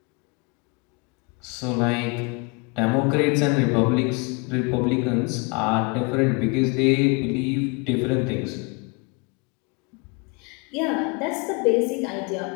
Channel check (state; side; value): quieter; right; 31.0 dB